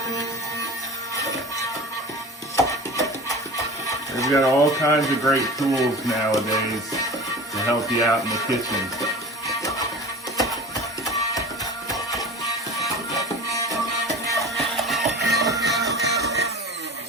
We've got all kinds of great tools nowadays to help you out in the kitchen.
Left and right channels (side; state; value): both; normal; correlation 0.36